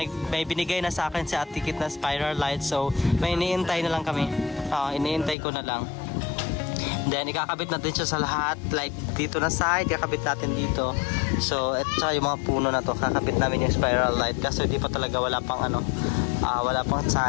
binigay na sa akin si Ate Kit na spiral light. So, may iniintay na lang kami. Iniintay ko na lang. Then, ikakabit natin siya sa lahat. Like, dito na side, ikakabit natin dito. So, at saka yung mga puno na to, kakabit namin yung spiral light. Kasi di pa talaga wala pang wala pang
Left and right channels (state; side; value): drops out; right; at 5.4 s